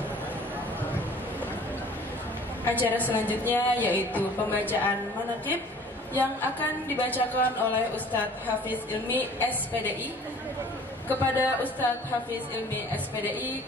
Acara selanjutnya yaitu pembacaan manaqib yang akan dibacakan oleh Ustadz Hafiz Ilmi SPDI. Kepada Ustadz Hafiz Ilmi SPDI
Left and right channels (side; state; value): both; normal; correlation 0.50